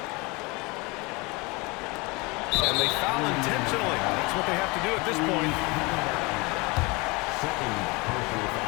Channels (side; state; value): right; quieter; 26.3 dB